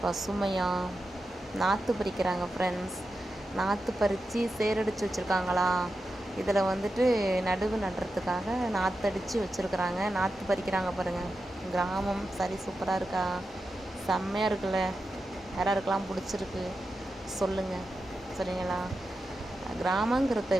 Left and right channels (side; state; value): both; normal; correlation 0.90